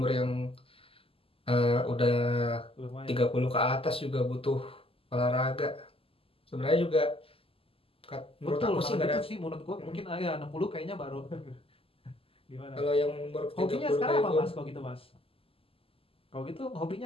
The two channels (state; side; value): late; right; 0.27 ms